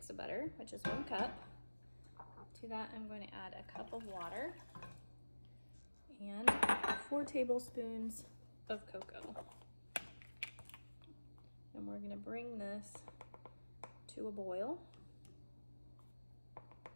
of butter, which is 1 cup. To that, I'm going to add a cup of water and 4 tablespoons of cocoa. And we're going to bring this to a boil.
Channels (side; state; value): both; inverted; correlation -1.00